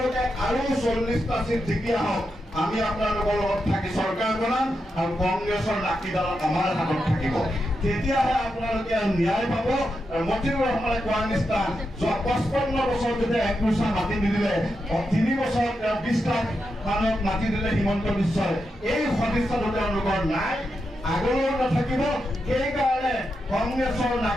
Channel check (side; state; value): both; normal; correlation 0.86